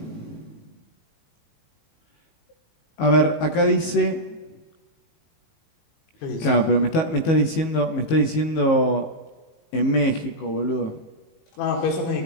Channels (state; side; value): late; right; 19 ms